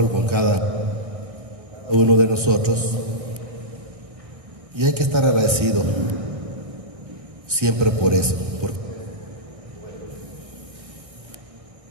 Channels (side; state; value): left; late; 1.6 ms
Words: con cada uno de nosotros, y hay que estar agradecido siempre por eso, porque